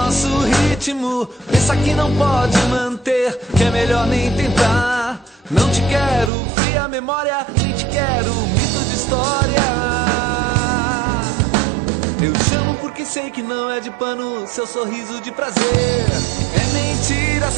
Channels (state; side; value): drops out; left; at 6.3 s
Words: ritmo. Pensa que não pode manter, que é melhor nem tentar. Não te quero fria memória, nem te quero mito de história. Eu chamo porque sei que não é de pano seu sorriso de prazer. É mentira